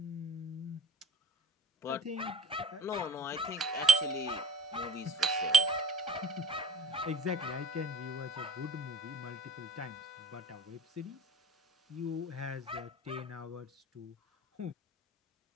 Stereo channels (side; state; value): both; normal; correlation 0.45